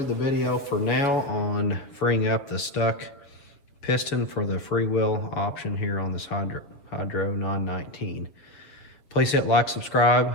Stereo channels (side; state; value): right; late; 7.4 ms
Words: the video for now on freeing up the stuck piston for the freewheel option here on this Hydro 919. Please hit like, subscribe,